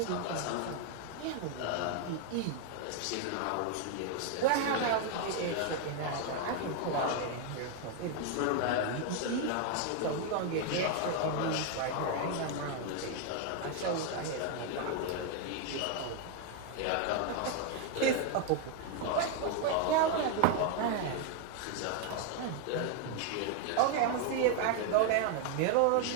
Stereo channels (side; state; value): both; different; correlation 0.01